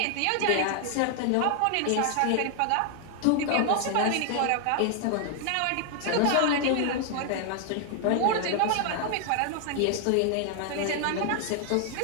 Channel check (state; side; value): different; both; correlation 0.00